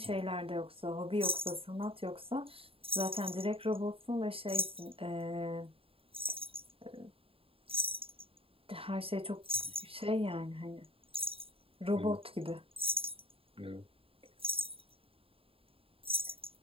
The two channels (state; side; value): late; left; 0.27 ms